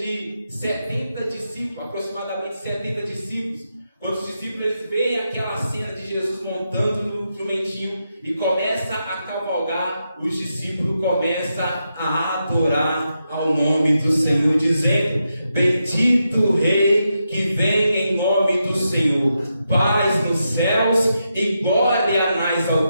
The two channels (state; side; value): inverted; both; correlation -0.85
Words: 70 discípulos, aproximadamente 70 discípulos. Quando os discípulos eles veem aquela cena de Jesus montando no jumentinho e começa a cavalgar, os discípulos começam a adorar ao nome do Senhor, dizendo: bendito o Rei que vem em nome do Senhor, paz nos céus e glória nas